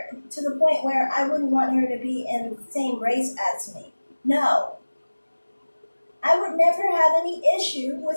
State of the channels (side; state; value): both; inverted; correlation -1.00